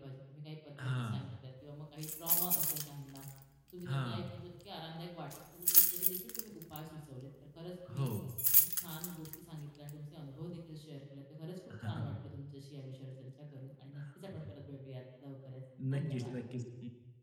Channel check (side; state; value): both; identical; correlation 1.00